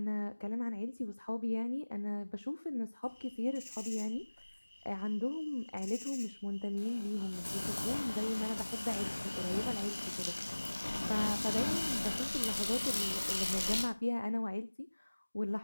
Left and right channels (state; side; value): inverted; both; correlation -1.00